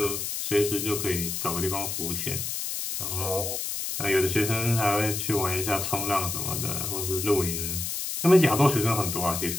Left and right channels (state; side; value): noise; left; hiss, 3 dB below the sound